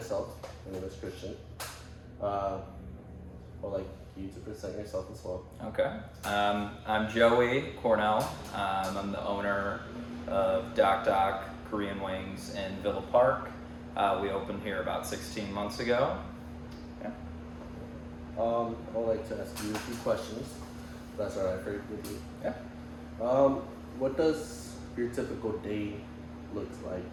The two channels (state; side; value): identical; both; correlation 1.00